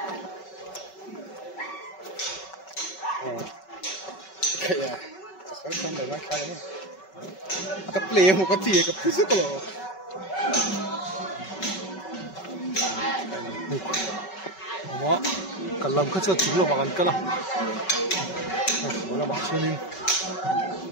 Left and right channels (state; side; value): late; right; 5.3 ms